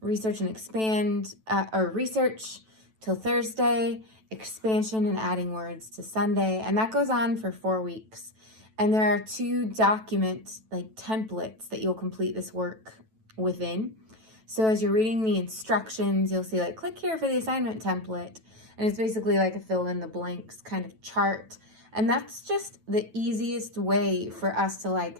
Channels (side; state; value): left; late; 9.1 ms